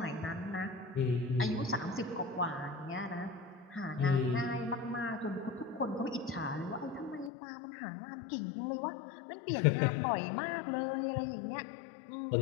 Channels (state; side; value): drops out; right; at 7.3 s